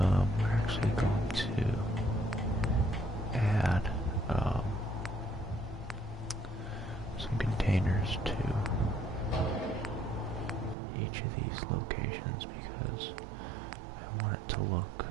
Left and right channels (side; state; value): left; drops out; at 10.8 s